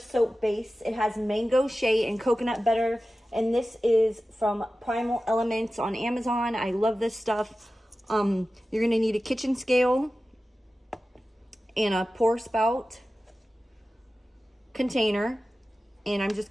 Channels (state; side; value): normal; both; correlation 0.95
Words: base. It has mango, shea, and coconut butter, and this is from Primal Elements on Amazon. I love this stuff. You're going to need a kitchen scale and a pour spout container, and I'm just